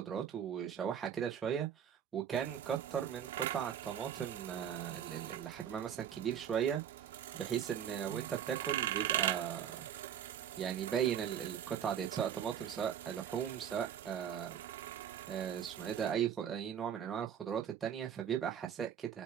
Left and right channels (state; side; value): quieter; left; 8.9 dB